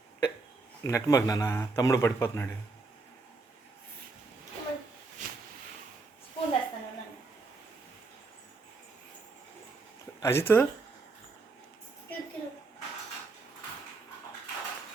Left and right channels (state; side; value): quieter; left; 3.7 dB